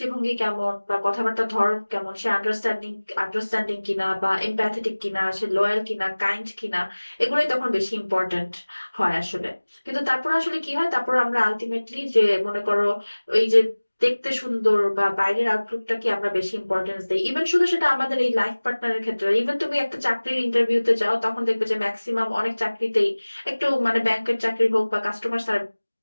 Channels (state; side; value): inverted; both; correlation -1.00